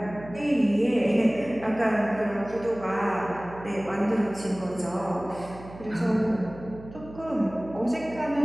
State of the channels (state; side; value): noise; right; hum, 16 dB below the sound